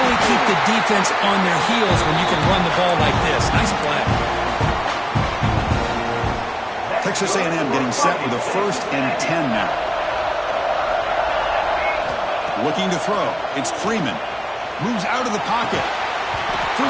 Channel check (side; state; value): both; identical; correlation 1.00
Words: keep the defense on their heels when you can run the ball like this. Nice play. Texas A&M getting set with a 1st and 10 now. Looking to throw. It's Freeman. Moves out of the pocket.